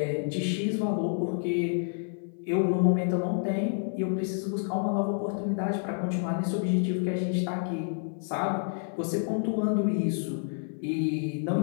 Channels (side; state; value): right; silent; 55 dB below the other